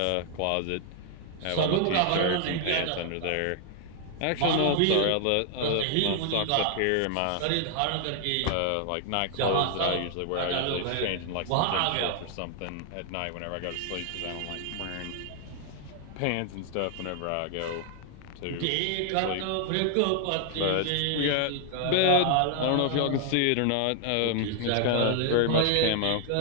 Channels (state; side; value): different; both; correlation 0.00